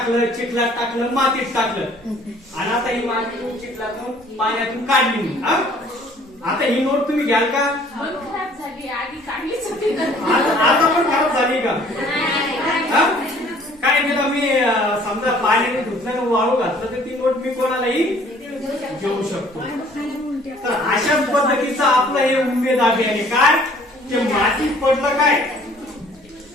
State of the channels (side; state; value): both; normal; correlation 0.55